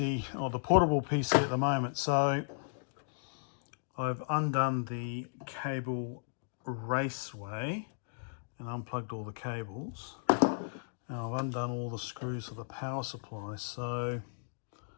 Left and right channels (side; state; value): right; silent; digital silence